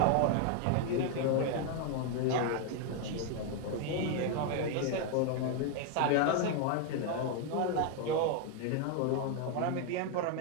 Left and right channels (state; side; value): different; both; correlation 0.00